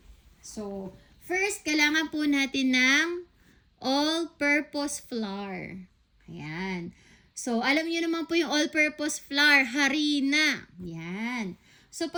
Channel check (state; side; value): identical; both; correlation 1.00